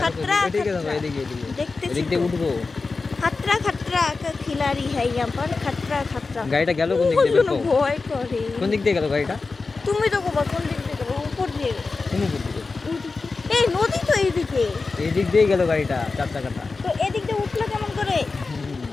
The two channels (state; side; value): quieter; right; 4.1 dB